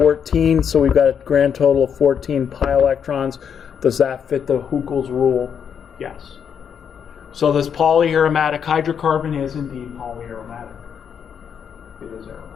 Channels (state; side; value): quieter; right; 7.6 dB